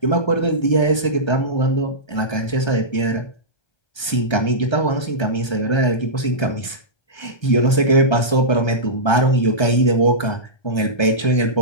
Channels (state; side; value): late; right; 1.3 ms